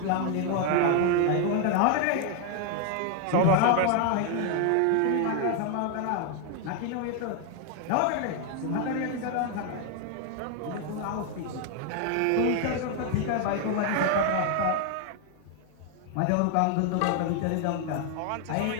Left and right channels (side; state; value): both; different; correlation 0.00